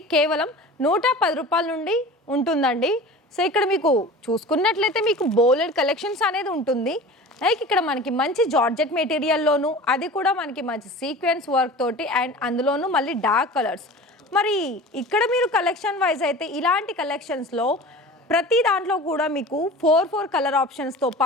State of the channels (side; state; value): both; normal; correlation 0.37